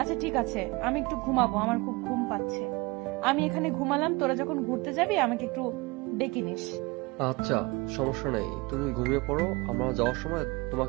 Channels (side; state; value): left; quieter; 24.9 dB